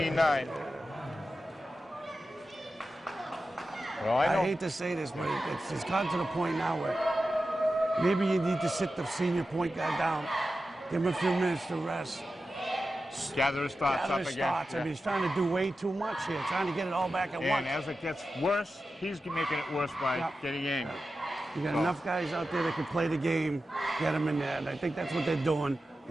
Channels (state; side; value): normal; both; correlation 0.92